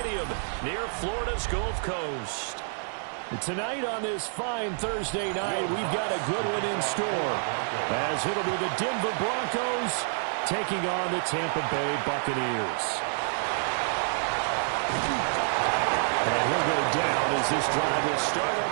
near Florida's Gulf Coast. Tonight on this fine Thursday night, we've got a good one in store, as it'll be the Denver Broncos taking on the Tampa Bay Buccaneers. And he'll go down as this drive will start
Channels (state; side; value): silent; left; 59 dB below the other